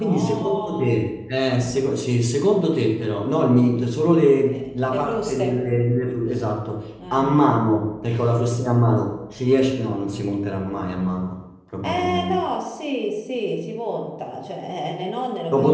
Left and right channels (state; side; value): identical; both; correlation 1.00